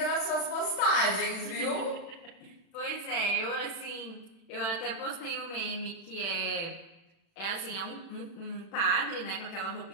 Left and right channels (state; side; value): late; right; 36 ms